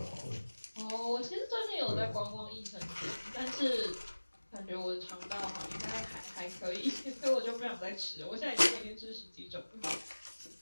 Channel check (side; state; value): both; inverted; correlation -1.00